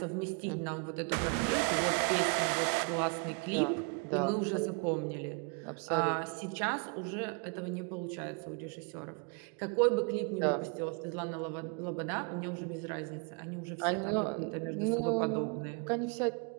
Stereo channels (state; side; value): quieter; left; 35.5 dB